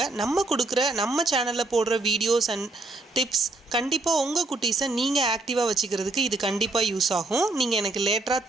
நம்ம சேனல்ல போடுற வீடியோஸ் அண்ட் டிப்ஸ் கண்டிப்பா உங்க குட்டீஸை நீங்க ஆக்டிவா வச்சுக்கிறதுக்கு இது கண்டிப்பா யூஸ் ஆகும். நீங்க எனக்கு லேட்டரா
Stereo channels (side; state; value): left; quieter; 3.0 dB